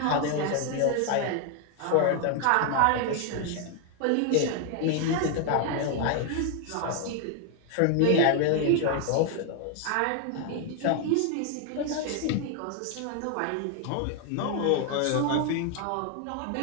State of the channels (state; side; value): different; both; correlation 0.01